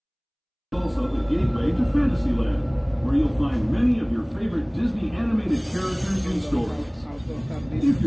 also the gateway to Fantasyland, where you'll find many of your favorite Disney animated characters and stories. If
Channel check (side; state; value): both; identical; correlation 1.00